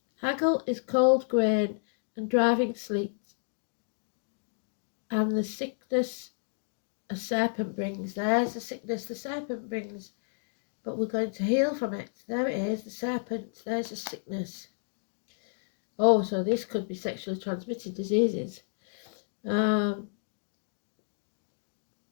Haggle is cold grain and driving sleet, and the sickness a serpent brings. There's the sickness the serpent brings, but we're going to heal from it. There it is, the serpent. There's the sickness. Oh, so this could be sexually transmitted diseases. The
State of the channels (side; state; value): right; silent; digital silence